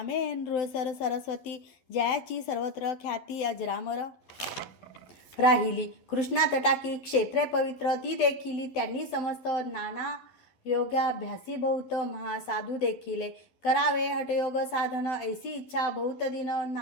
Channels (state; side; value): late; right; 12 ms